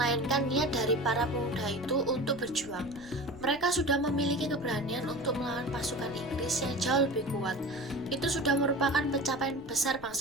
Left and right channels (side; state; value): left; noise; rumble, 19 dB below the sound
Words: niat dari para pemuda itu untuk berjuang. Mereka sudah memiliki keberanian untuk melawan pasukan Inggris yang jauh lebih kuat. Itu sudah merupakan pencapaian besar